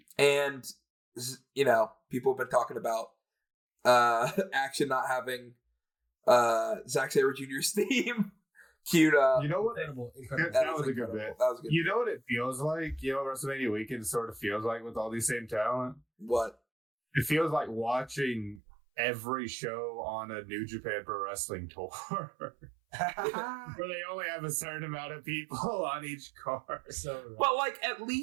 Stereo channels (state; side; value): drops out; left; at 18.6 s